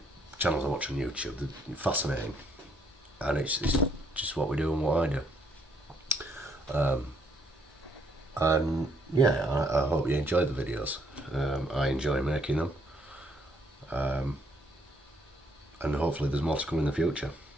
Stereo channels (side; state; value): both; normal; correlation 0.69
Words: channels I watch on YouTube, they're fascinating. And it's just what we do and what I do. And yeah, I hope you enjoy the videos. I enjoy making them. And hopefully there's more to come in the future.